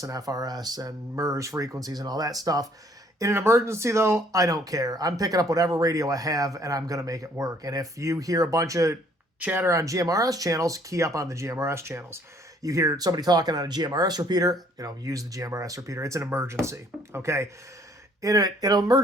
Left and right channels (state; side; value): normal; both; correlation 0.61